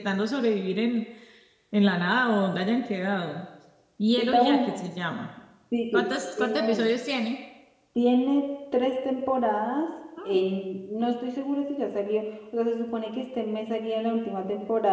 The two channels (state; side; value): identical; both; correlation 1.00